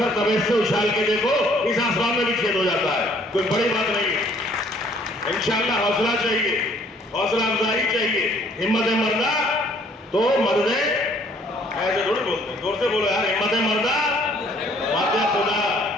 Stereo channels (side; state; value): both; normal; correlation 0.60